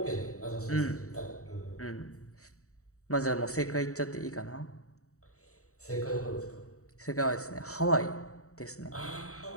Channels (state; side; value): late; right; 0.65 ms